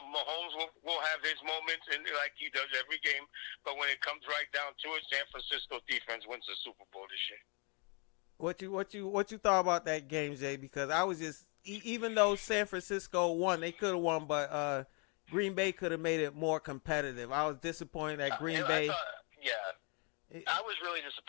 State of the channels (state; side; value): quieter; right; 34.8 dB